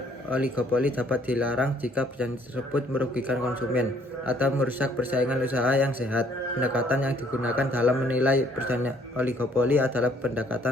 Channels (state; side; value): normal; both; correlation 0.62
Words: oligopoli dapat dilarang jika perjanjian tersebut merugikan konsumen atau merusak persaingan usaha yang sehat. Pendekatan yang digunakan dalam menilai perjanjian oligopoli adalah pendekatan